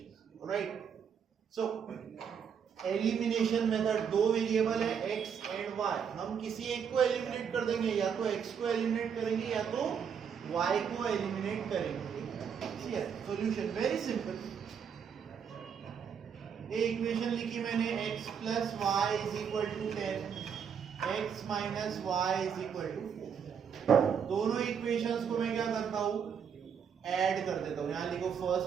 राइट? सो एलिमिनेशन मेथड, दो वेरिएबल है x एंड y, हम किसी एक को एलिमिनेट कर देंगे, या तो x को एलिमिनेट करेंगे या तो y को एलिमिनेट करेंगे। Solution very simple. ये इक्वेशन लिखी मैंने, x plus y is equal to 10, x minus y is equal to 4। दोनों इक्वेशंस को मैं क्या करता हूं, ऐड कर देता हूं। यहां लिखो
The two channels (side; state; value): left; quieter; 7.3 dB